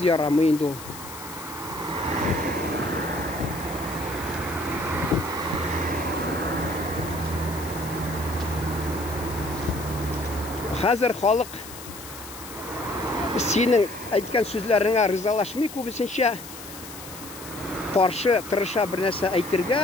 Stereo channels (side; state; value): left; noise; hiss, 14 dB below the sound